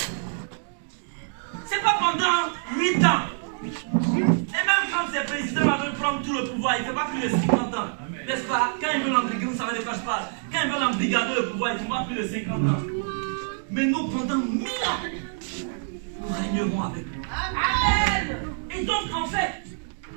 C'est pas pendant 8 ans. Et même quand ces présidents veulent prendre tout le pouvoir, il ne fait pas plus de 50 ans. N'est-ce pas? Quand ils veulent embrigader, vous savez de quoi je parle. Quand ils veulent embrigader le pouvoir, il ne fait pas plus de 50 ans. Mais nous, pendant 1000 ans, nous régnerons avec lui. Amen. Et donc, en fait,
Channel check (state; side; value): silent; left; digital silence